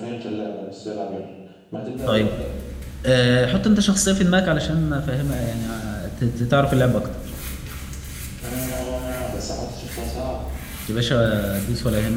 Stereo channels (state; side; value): identical; both; correlation 1.00